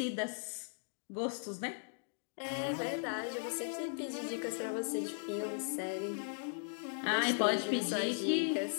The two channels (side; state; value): right; silent; digital silence